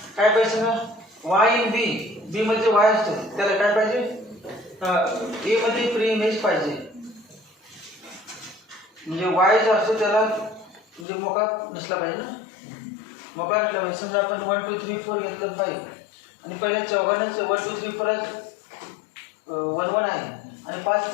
काय पाहिजे ना, y इन b मध्ये y असतो, त्याला काय पाहिजे, a मध्ये प्री इमेज पाहिजे. म्हणजे y जो असतो त्याला म्हणजे मोका नसला पाहिजे ना, मोका नसला पाहिजे. समजा आपण 1 2 3 4 घेतलं पाहिजे आणि पहिल्या चौघांनाच 1 2 3 4 ला 1 1 आहे आणि 5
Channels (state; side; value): drops out; right; at 11.1 s